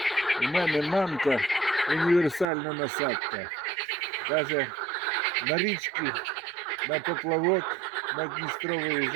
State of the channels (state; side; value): drops out; left; at 2.5 s